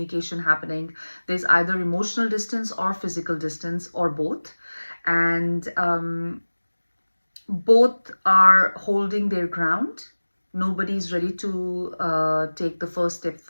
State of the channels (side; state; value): both; inverted; correlation -1.00